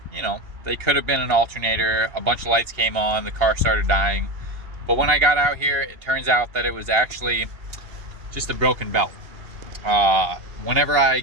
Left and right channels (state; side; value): late; left; 2.8 ms